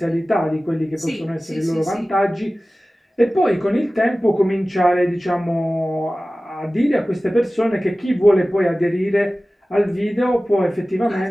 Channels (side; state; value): both; normal; correlation 0.97